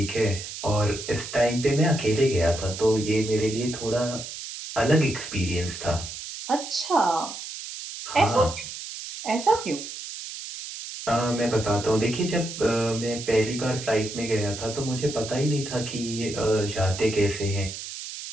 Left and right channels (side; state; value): right; noise; hiss, 9 dB below the sound